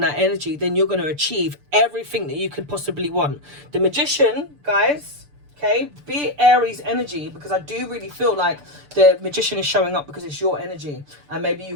that energy, then you're going to achieve everything that you could possibly want. The Magician, guys, okay, be Aries energy, because I do really feel like the Magician is showing up because it's your energy, and maybe you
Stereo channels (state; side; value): late; left; 6.8 ms